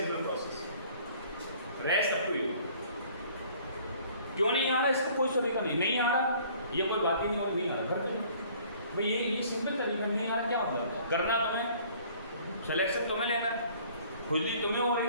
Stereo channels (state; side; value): inverted; both; correlation -0.54